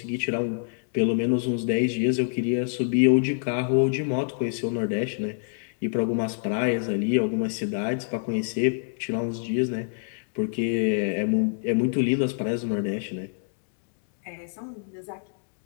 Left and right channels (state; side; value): silent; right; 61 dB below the other